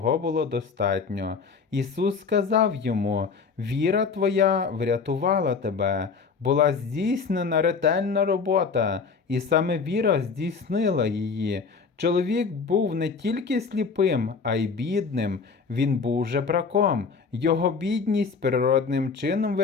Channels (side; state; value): right; quieter; 5.2 dB